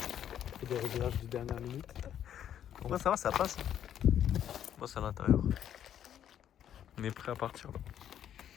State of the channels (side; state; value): right; quieter; 10.1 dB